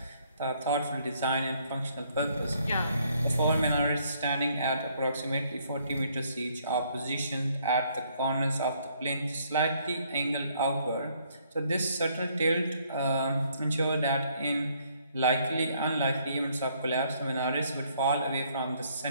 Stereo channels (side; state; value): both; inverted; correlation -0.67